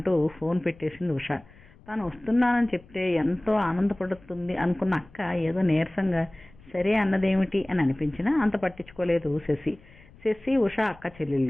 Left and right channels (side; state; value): left; noise; rumble, 24 dB below the sound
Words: ఫోన్ పెట్టేసింది ఉష. తాను వస్తున్నానని చెప్తే ఎంతో ఆనందపడుతుంది అనుకున్న అక్క ఏదో నీరసంగా సరే అన్నదేమిటి అని అనిపించినా అంత పట్టించుకోలేదు శశి ఉష అక్క